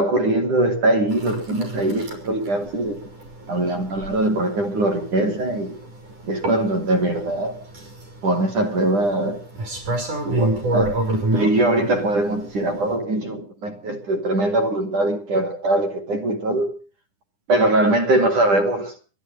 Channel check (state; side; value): late; left; 10 ms